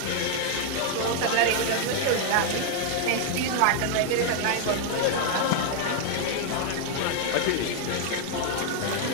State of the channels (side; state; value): both; different; correlation 0.00